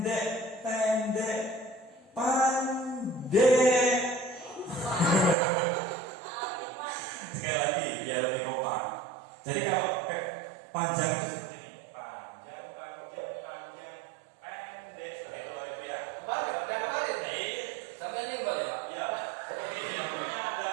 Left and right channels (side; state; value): left; drops out; at 5.4 s